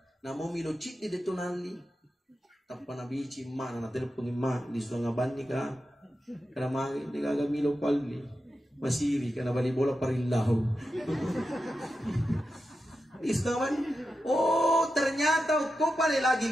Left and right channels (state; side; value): normal; both; correlation 0.90